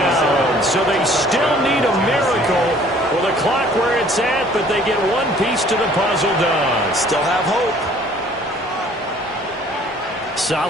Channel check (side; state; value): both; normal; correlation 0.55